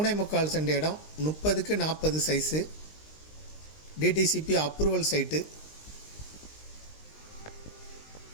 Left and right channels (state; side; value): late; right; 19 ms